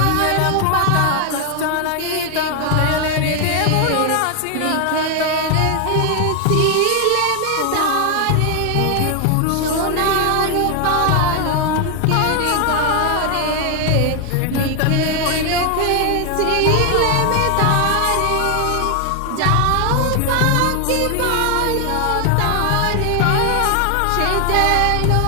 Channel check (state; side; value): different; both; correlation 0.00